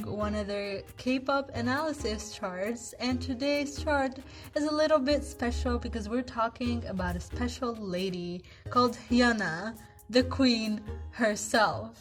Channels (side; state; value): both; identical; correlation 1.00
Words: one of their K-pop analysis charts, and today's chart is a little bit special because we're talking about a special lady called Hyuna, the queen